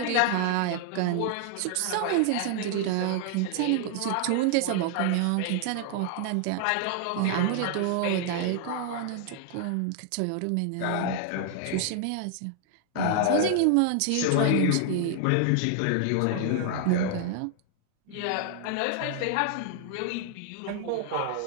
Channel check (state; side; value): different; both; correlation 0.00